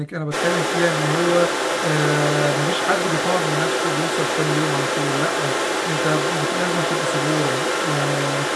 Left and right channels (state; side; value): identical; both; correlation 1.00